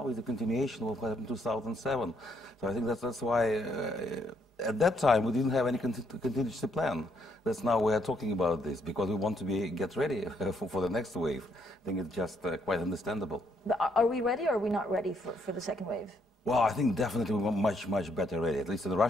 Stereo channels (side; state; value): both; normal; correlation 0.72